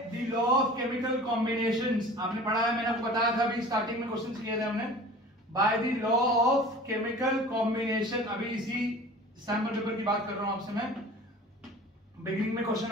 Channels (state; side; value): normal; both; correlation 0.42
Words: the law of chemical combinations. आपने पढ़ा है, मैंने आपको बताया था अभी स्टार्टिंग में क्वेश्चन किए थे हमने, bye the law of chemical combination. अभी इसी सैंपल पेपर की बात कर रहा हूं आपसे मैं, बिगिनिंग में क्वेश्चन